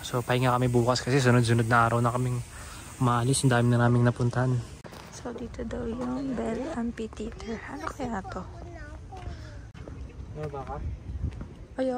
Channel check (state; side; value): identical; both; correlation 1.00